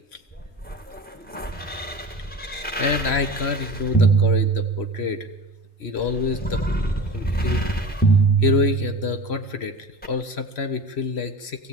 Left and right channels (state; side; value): normal; both; correlation 0.32